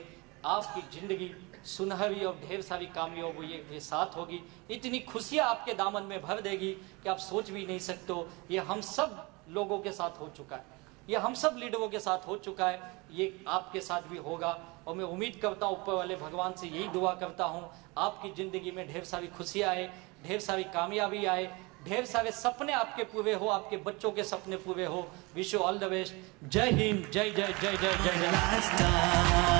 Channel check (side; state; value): left; quieter; 26.0 dB